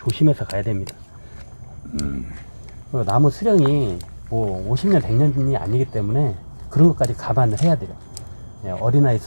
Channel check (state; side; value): inverted; both; correlation -1.00